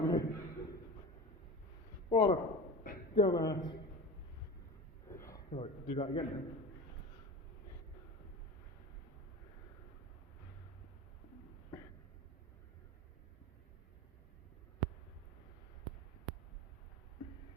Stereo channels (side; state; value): both; normal; correlation 0.31